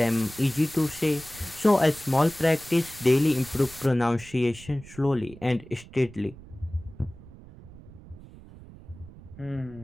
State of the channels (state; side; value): noise; right; rumble, 19 dB below the sound